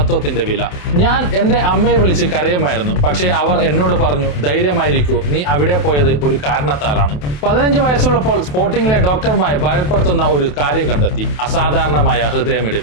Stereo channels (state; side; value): late; right; 28 ms